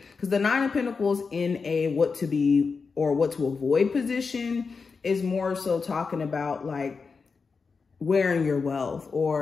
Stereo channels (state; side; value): quieter; right; 4.9 dB